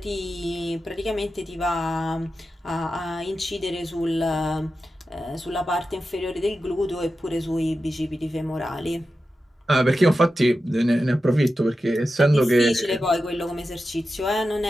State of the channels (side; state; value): both; normal; correlation 0.91